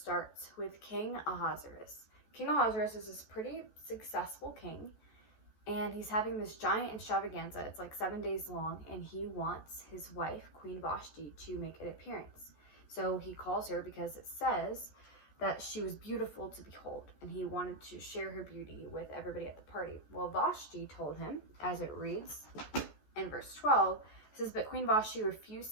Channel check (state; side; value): late; right; 14 ms